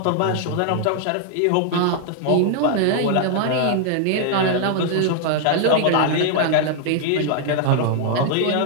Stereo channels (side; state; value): both; different; correlation 0.00